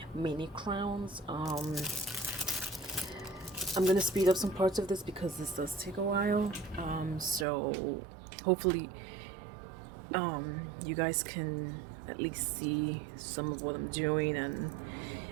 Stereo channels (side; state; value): left; drops out; at 7.5 s